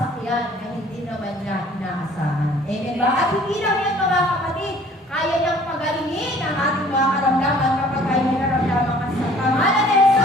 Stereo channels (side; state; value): both; normal; correlation 0.54